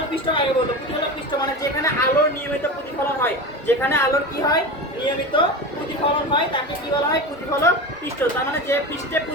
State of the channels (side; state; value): both; normal; correlation 0.26